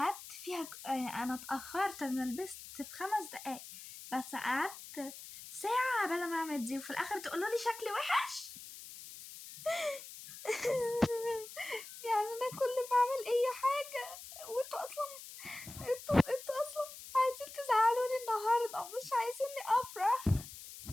فيها انا اتأخرت، انا لبست في 5 دقايق بس قعدت ساعة قبل ما اعمل دي، وفي الاخر تقولوا لي شكلي وحش. يعني انا كل ما اعمل اي حاجة وانتوا اصلا انتوا اصلا عايزين تزعلوني النهاردة، مش عايزيني افرح.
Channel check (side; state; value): left; noise; hiss, 14 dB below the sound